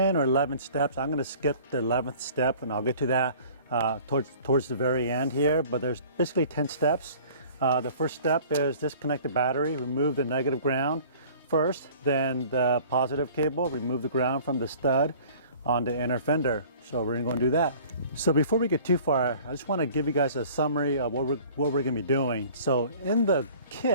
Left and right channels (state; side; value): inverted; both; correlation -0.48